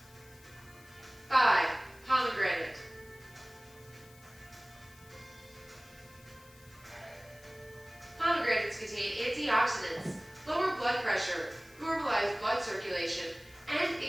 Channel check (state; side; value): noise; left; hiss, 24 dB below the sound